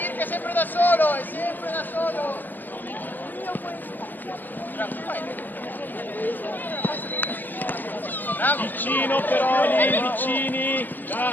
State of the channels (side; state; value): right; late; 0.087 ms